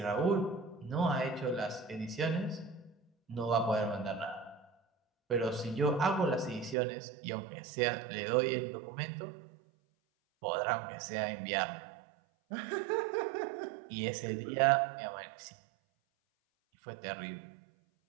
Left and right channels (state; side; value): drops out; left; at 6.8 s